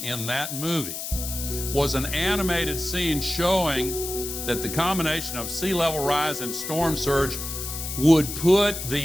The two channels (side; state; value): left; noise; hiss, 6 dB below the sound